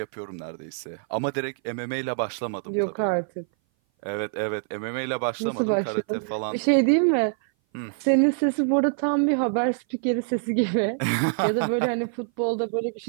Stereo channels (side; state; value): left; silent; 58 dB below the other